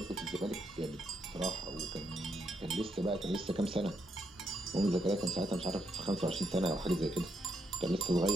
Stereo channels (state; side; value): normal; both; correlation 0.79